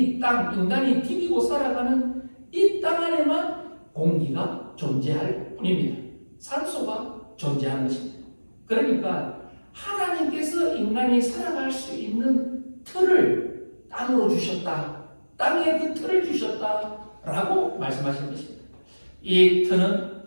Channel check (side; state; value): both; inverted; correlation -1.00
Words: 땅, 인간이 디디고 살아가는 이 땅 안에만 공기가 존재할 뿐입니다. 산소가 존재하는 것입니다. 그러니까 하나님께서 인간이 살아갈 수 있는 틀을 땅으로 주셨다. 땅에 그 틀을 주셨다라고 말씀하시는 것입니다. 이 틀은,